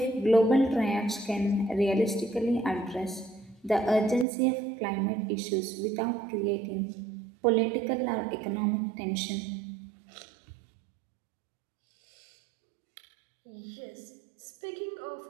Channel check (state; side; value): drops out; left; at 4.2 s